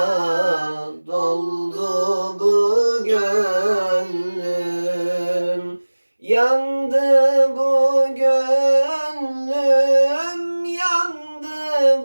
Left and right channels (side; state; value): both; inverted; correlation -1.00